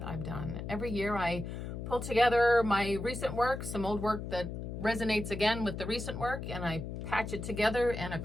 I've done. Every year I pull together my recent work, some old work that resonates again with the recent work, and I patch it together in a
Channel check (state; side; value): noise; left; hum, 6 dB below the sound